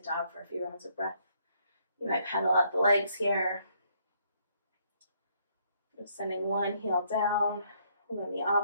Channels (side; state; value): both; inverted; correlation -0.70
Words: dog for a few rounds of breath. You might pedal out the legs here. Just sending one heel down and then the